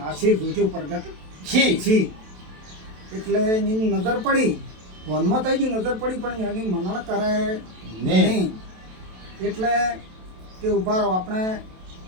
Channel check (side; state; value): left; late; 27 ms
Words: આશીર જોજો પ્રગટ છી. એટલે એની નજર પડી, વનમાં થઈ ગઈ નજર પડી, પણ એની મનણ કરે નહીં. એટલે કે ઉભા રહો, આપણે